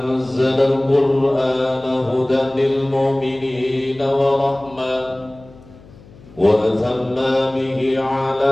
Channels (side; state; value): left; noise; hum, 23 dB below the sound